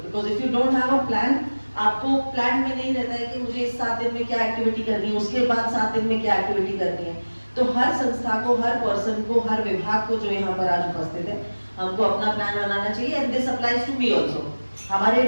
Because if you don't have a plan, आपको प्लान में नहीं रहता है कि मुझे इस 7 दिन में क्या एक्टिविटी करनी है, उसके बाद 7 दिन में क्या एक्टिविटी करनी है। तो हर संस्था को, हर पर्सन को, हर विभाग को जो यहाँ पर आज उपस्थित है, हमको अपना प्लान बनाना चाहिए। And this applies to me also. हमारे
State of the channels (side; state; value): both; inverted; correlation -1.00